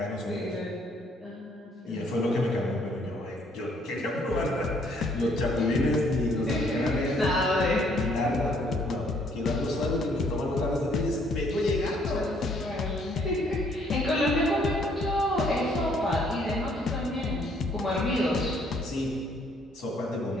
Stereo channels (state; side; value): normal; both; correlation 0.65